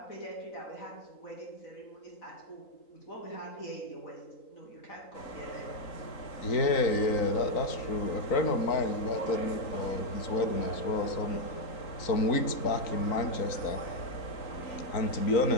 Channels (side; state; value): right; late; 3.9 ms